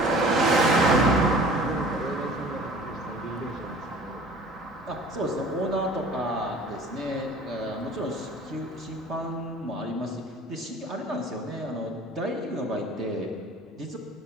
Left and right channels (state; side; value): normal; both; correlation 0.47